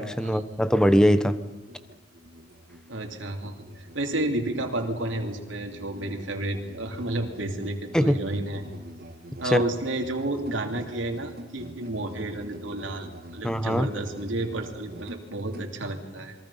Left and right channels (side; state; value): both; normal; correlation 0.72